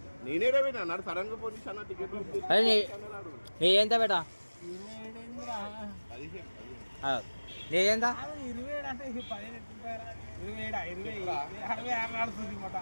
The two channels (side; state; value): both; inverted; correlation -1.00